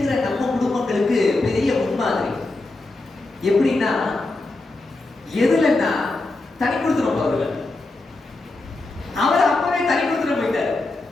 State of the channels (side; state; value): right; quieter; 3.1 dB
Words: நம்ம குடும்பங்களுக்கு பெரிய முன்மாதிரி. எப்படின்னா, எதுலன்னா தனி கொடுத்துரும் அவர்கள். அவர் அப்பவே தனி கொடுத்துட்டு போயிட்டார்,